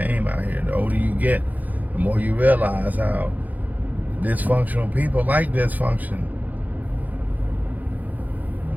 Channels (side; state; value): left; late; 0.081 ms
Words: out here. The older you get, the more you realize how dysfunctional people like dysfunction.